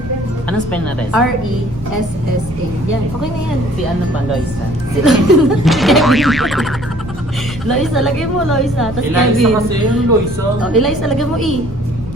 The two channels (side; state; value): both; normal; correlation 0.55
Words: Anong spell na res? R-E-S-S-A. Yan. Okay na yan. Si ano pa, Loisa? Si Loisa, lagay mo Loisa. Tapos Kevin. yung Loisa. Oh, Eliza, lagay mo E.